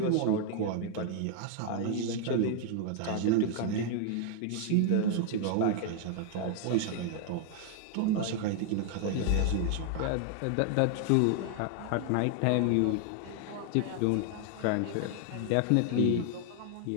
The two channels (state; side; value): different; both; correlation 0.00